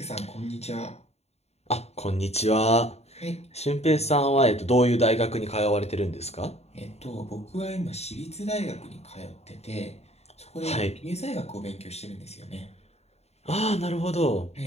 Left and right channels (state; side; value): late; right; 0.31 ms